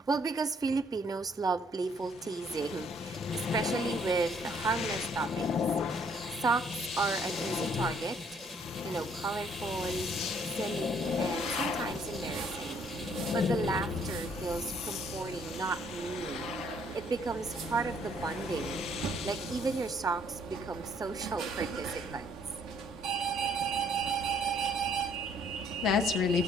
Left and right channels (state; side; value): normal; both; correlation 0.64